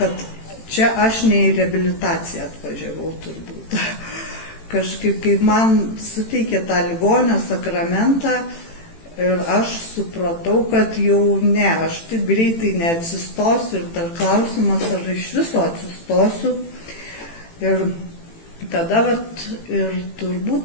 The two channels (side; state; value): right; late; 18 ms